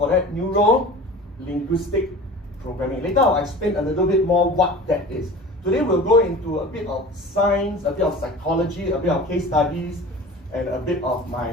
that neuro-linguistic programming. Later I'll explain a little bit more what that is. Today we'll go into a bit of science, a bit of psychology, a bit of case studies, and a bit of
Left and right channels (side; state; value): both; normal; correlation 0.39